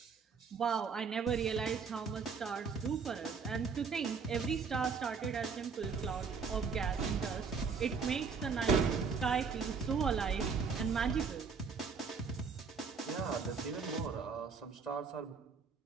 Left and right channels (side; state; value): left; quieter; 5.4 dB